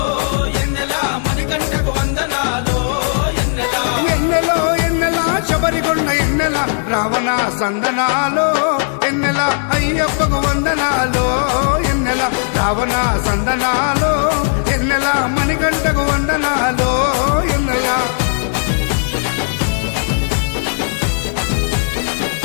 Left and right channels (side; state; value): right; silent; 69 dB below the other